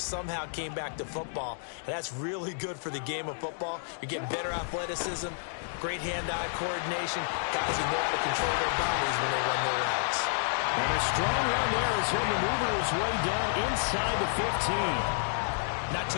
came back to football. And that's really good for the game of football. You're getting better athleticism, great hand-eye coordination. Guys who know how to control their bodies when they run their routes. And a strong run there as he'll maneuver his way down inside the 15. Not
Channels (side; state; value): right; silent; digital silence